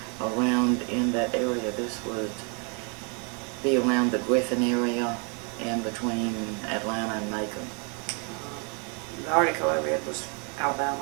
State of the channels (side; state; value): left; quieter; 36.5 dB